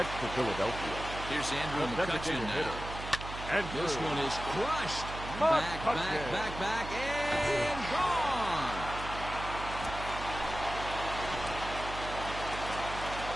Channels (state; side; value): noise; right; hum, 9 dB below the sound